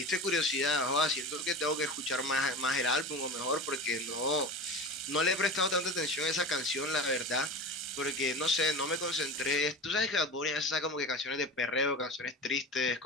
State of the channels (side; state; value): both; normal; correlation 0.30